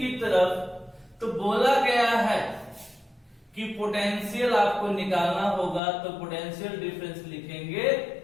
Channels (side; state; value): right; drops out; at 5.8 s